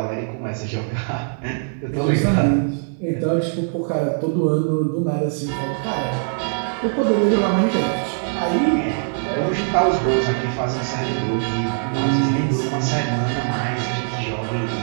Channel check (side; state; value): left; silent; digital silence